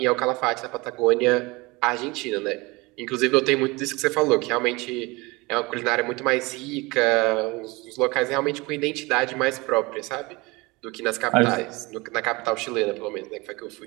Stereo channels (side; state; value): left; quieter; 24.1 dB